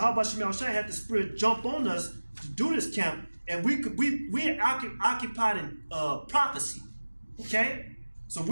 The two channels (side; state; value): both; inverted; correlation -1.00